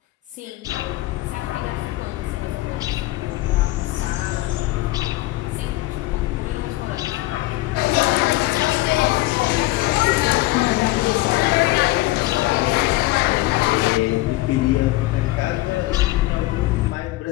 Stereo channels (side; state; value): right; quieter; 18.7 dB